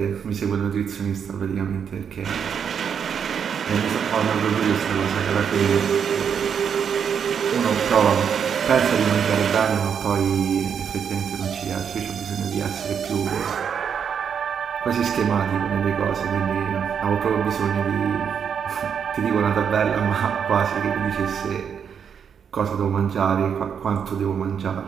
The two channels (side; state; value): left; quieter; 7.4 dB